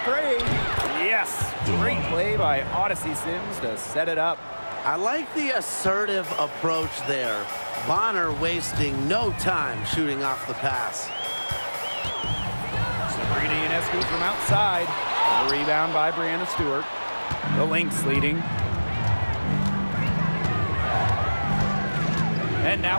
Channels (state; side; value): inverted; both; correlation -1.00